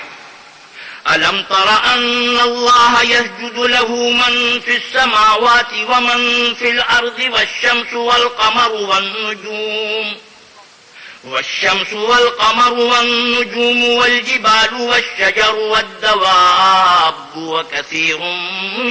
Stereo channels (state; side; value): identical; both; correlation 1.00